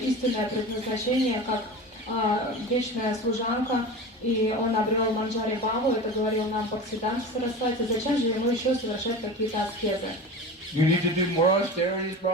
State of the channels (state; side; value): normal; both; correlation 0.31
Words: предназначение как вечная служанка, и он обрел Манджари Бхаву, это говорил нам Бхактисиддханта Сарасвати. Зачем же ему еще совершать какие-то аскезы? You need to do more austerities,